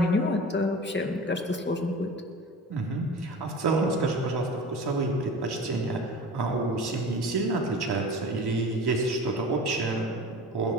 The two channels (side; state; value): both; normal; correlation 0.36